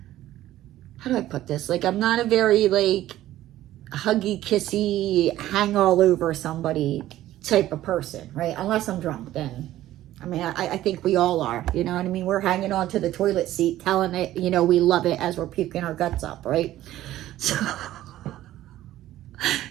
how do I put this? Like, I'm not a very, like, huggy, kissy, hang all over somebody type of person, right? Unless I'm drunk, then, I mean, I think we all are, you know what I mean? We're hanging on to the toilet seat, telling it, you know, we love it as we're puking our guts up, right? So...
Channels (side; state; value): left; quieter; 14.1 dB